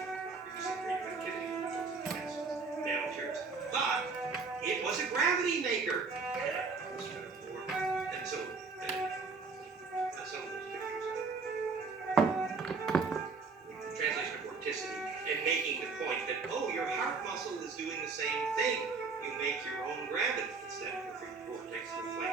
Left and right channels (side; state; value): left; quieter; 4.5 dB